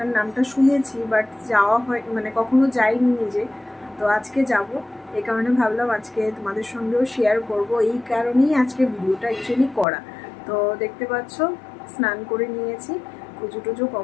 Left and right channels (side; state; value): right; drops out; at 9.9 s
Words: নামটা শুনেছি, বাট যাওয়া হয় মানে কখনো যাইনি নিজে। তো আজকে যাব, এই কারণে ভাবলাম আজকে তোমাদের সঙ্গেও শেয়ার করব। এই কারণেই আজকে ভিডিওটা অ্যাকচুয়ালি করা। তো দেখতে পাচ্ছ স্নান করে নিয়েছি, পুজো টুজো